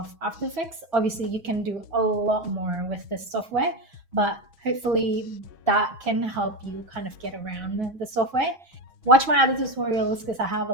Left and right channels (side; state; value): left; late; 6.2 ms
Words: After Effects. Obviously, you can do a lot more with this software, but hopefully that can help you kind of get around the software. Watch my other tutorials because I have